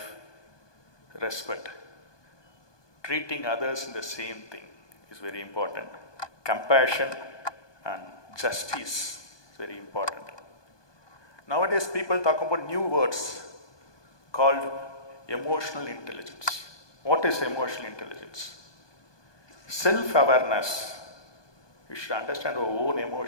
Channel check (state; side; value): late; right; 1.2 ms